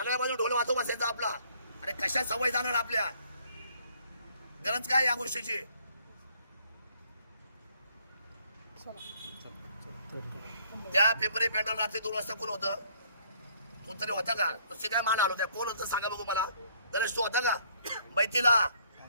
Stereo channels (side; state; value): both; inverted; correlation -0.63